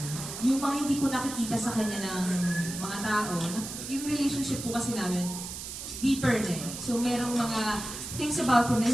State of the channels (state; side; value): noise; right; hiss, 8 dB below the sound